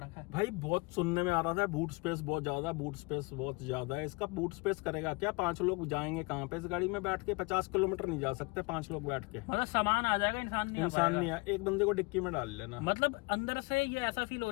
है। भाई बहुत सुनने में आ रहा था बूट स्पेस बहुत ज्यादा, बूट स्पेस बहुत ज्यादा है। इसका बूट स्पेस करेगा क्या? 5 लोग जाएंगे कहाँ पे इस गाड़ी में बैठ के? 50 किलोमीटर नहीं जा सकते 5 लोग बैठ के। मतलब सामान आ जाएगा, इंसान नहीं है। एक बंदे को डिक्की में डाल लेना। मतलब अंदर से ये ऐसा फील हो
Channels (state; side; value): quieter; right; 26.6 dB